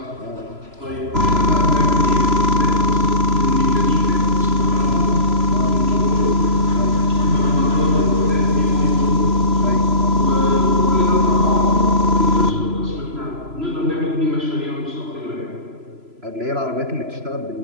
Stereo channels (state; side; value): late; left; 3.0 ms